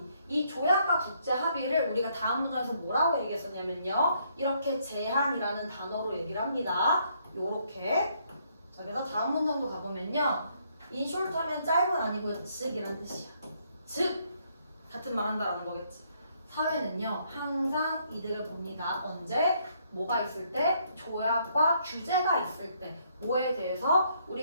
이 조약과 국제 합의를 우리가 다음 문장에서 뭐라고 얘기했었냐면요. 이렇게 제한이라는 단어로 얘기를 합니다. 요렇게. 자, 그래서 다음 문장도 가보면요. in short 하면 짧은 아니고요. 즉이란 뜻이야. 즉, 같은 말 한다라는 거겠지. 사회는요, 항상 이득을 봅니다. 언제? 뭐가 있을 때? 조약과 규제가 있을 때. 뭐에 대해서?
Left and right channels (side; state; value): both; inverted; correlation -0.70